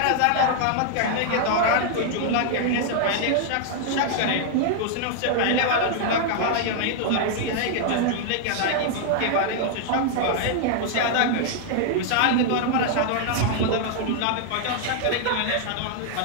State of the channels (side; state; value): both; different; correlation -0.01